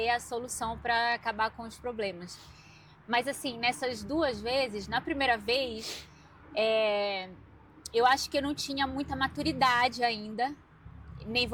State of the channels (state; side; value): identical; both; correlation 1.00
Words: a solução para acabar com os problemas. Mas assim, nessas 2 vezes, na primeira vez, eu acho que eu não tinha muita maturidade ainda, nem